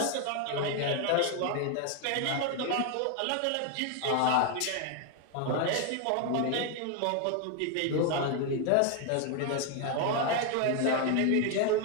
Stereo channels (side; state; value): both; different; correlation 0.01